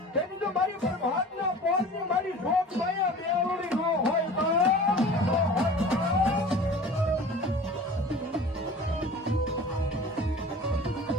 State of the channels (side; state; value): both; normal; correlation 0.41